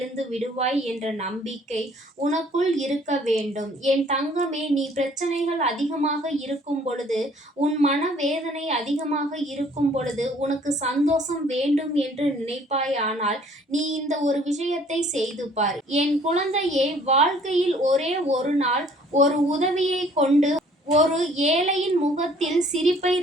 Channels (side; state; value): both; normal; correlation 0.57